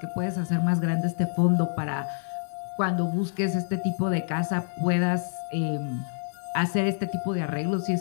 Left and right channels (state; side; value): silent; right; digital silence